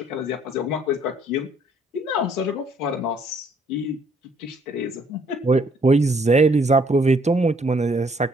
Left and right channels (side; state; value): both; normal; correlation 0.65